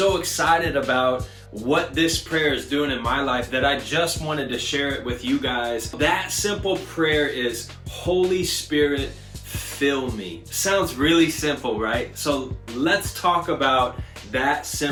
excited about what this prayer is doing in my life that I just wanted to share it with you guys. That simple prayer is, Holy Spirit, fill me. Sounds really simple, right? So let's talk about that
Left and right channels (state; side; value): identical; both; correlation 1.00